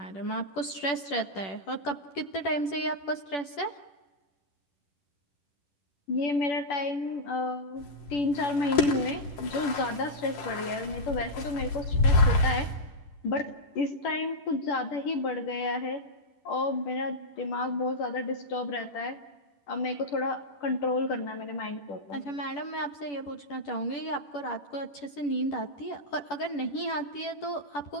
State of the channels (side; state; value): right; late; 10 ms